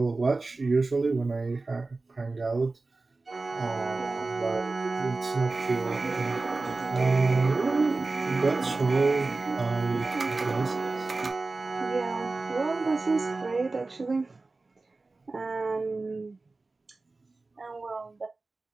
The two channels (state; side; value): quieter; left; 3.5 dB